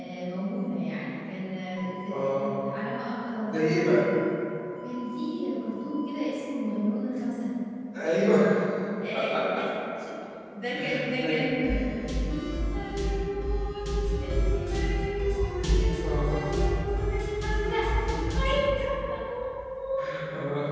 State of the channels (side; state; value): both; identical; correlation 1.00